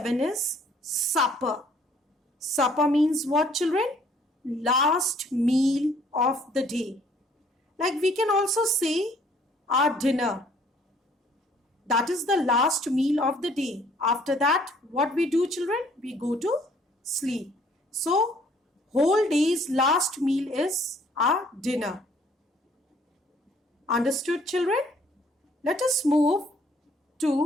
is supper. Supper means what children? Last meal of the day. Like we can also say our dinner. That is the last meal of the day. After that, what we do children? We go to sleep. So, whole day's last meal is our dinner. Understood children? Let us move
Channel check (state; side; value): normal; both; correlation 0.61